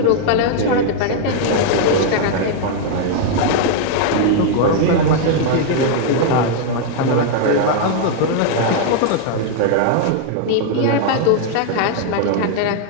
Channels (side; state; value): both; different; correlation 0.00